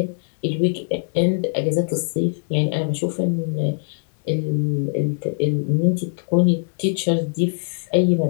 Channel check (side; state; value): right; silent; digital silence